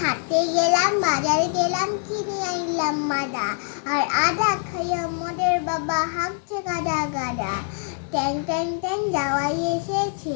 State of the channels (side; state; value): right; silent; 57 dB below the other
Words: হাটে গেলাম, বাজারে গেলাম, কিনে আনলাম মাদা, আর আদা খাইয়া মদের বাবা হাঁকছে গাদা গাদা। ট্যাং ট্যাং ট্যাং যাওয়াই